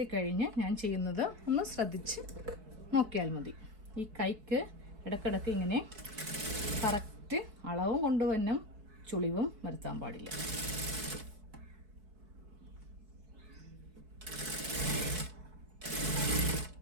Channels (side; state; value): left; late; 4.6 ms